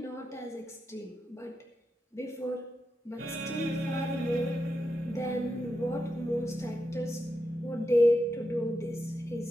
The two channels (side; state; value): both; normal; correlation 0.87